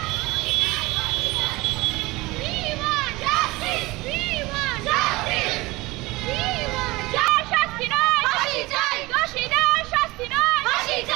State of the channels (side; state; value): left; quieter; 21.5 dB